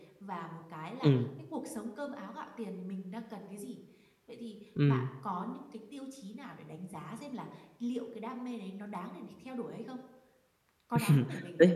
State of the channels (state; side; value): identical; both; correlation 1.00